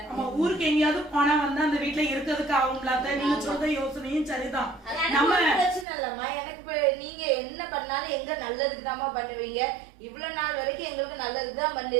ஊருக்கு எங்கேயாவது போனா வந்து அந்த வீட்டுல இருக்கிறதுக்கு ஆகும்ல. நீங்க சொல்ற யோசனையும் சரிதான். நம்ம பிரச்சனை இல்லம்மா. எனக்கு நீங்க என்ன பண்ணாலும் எங்க நல்லதுக்கு தான் பண்ணுவீங்க. இவ்வளவு நாள் வரைக்கும் எங்களுக்கு நல்லதுக்கு தான் பண்ணி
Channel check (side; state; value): left; drops out; at 5.9 s